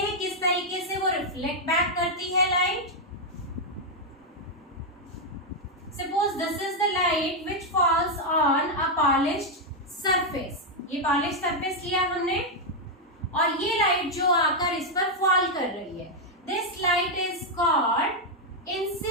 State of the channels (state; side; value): normal; both; correlation 0.00